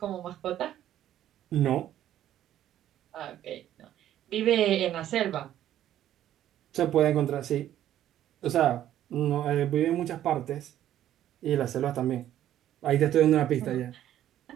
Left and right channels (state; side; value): quieter; left; 12.0 dB